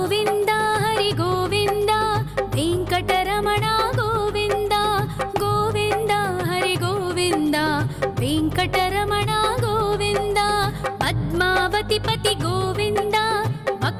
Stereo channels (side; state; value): both; identical; correlation 1.00